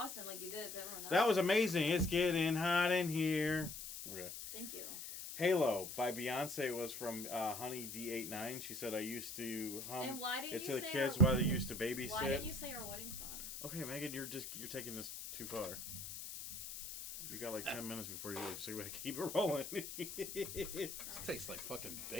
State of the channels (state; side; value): noise; left; hiss, 8 dB below the sound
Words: like you did to everyone else. That was amazing. It's getting hot in here. Okay. Thank you. Halo by Beyonce was from Honey D89. She said, I used to hum it to the kids while they used to babysit. Why didn't you say our wedding song? Okay, Megan, you're taking this too far. You got like 10 minutes before you leave, so you gotta keep it rolling. This tastes like fucking